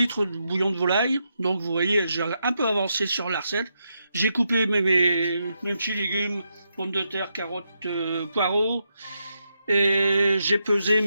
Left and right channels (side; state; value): both; inverted; correlation -0.83